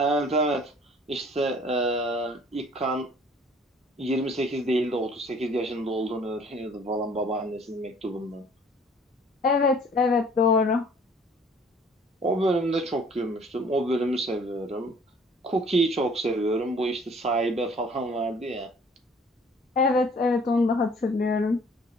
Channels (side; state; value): both; normal; correlation 0.54